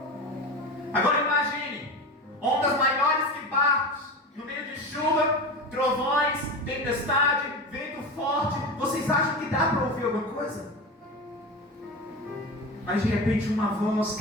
Agora imagine, ondas maiores que barcos, no meio de chuva, trovões, tempestade, vento forte. Vocês acham que dá para ouvir alguma coisa? Mas de repente uma voz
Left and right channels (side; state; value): both; normal; correlation 0.26